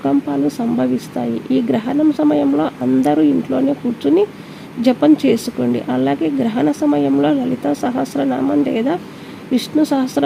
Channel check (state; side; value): identical; both; correlation 1.00